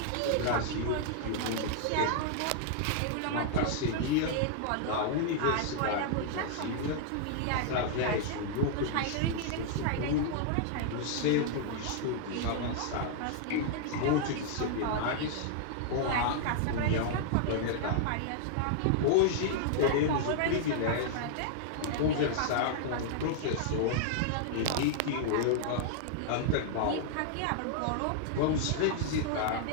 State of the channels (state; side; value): different; both; correlation -0.01